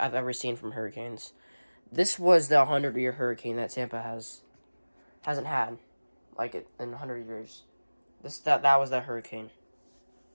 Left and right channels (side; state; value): both; inverted; correlation -1.00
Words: ever seen from hurricanes. This was the 100-year hurricane that Tampa hasn't had, in 100 years. That was that hurricane.